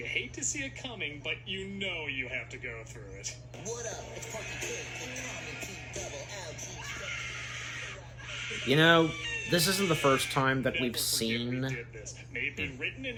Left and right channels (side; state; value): both; identical; correlation 1.00